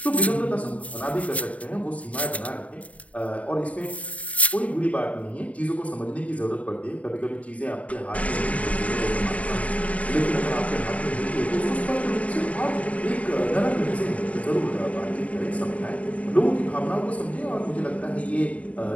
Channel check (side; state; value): right; late; 0.068 ms